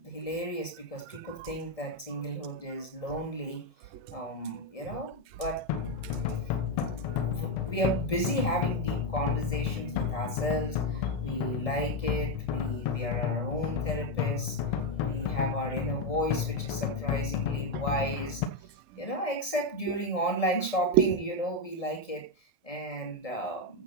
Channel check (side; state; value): right; late; 1.7 ms